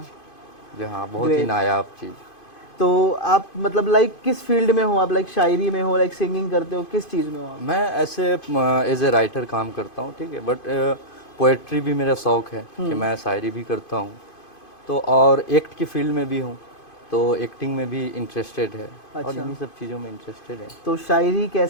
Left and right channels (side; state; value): right; late; 2.5 ms